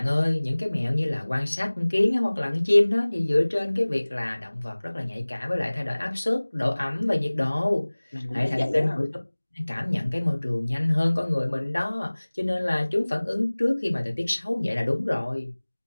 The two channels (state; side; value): inverted; both; correlation -1.00